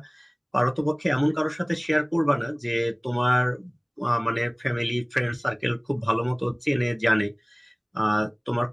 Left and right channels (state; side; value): identical; both; correlation 1.00